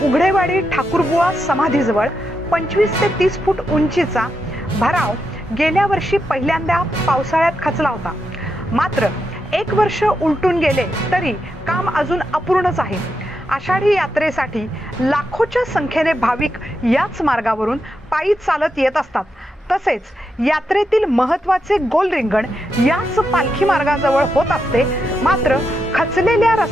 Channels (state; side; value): normal; both; correlation 0.85